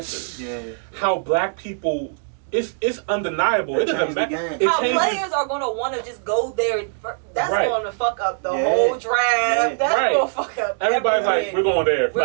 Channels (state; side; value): silent; left; digital silence